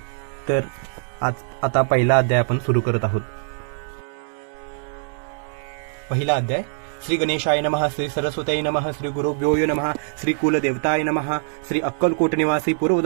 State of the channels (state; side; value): silent; left; digital silence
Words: तर आता पहिला अध्याय आपण सुरू करत आहोत. पहिला अध्याय. श्री गणेशाय नमः, श्री सरस्वतीय नमः, श्री गुरुभ्यो नमः, श्री कुलदेवताय नमः, श्री अक्कलकोट निवासी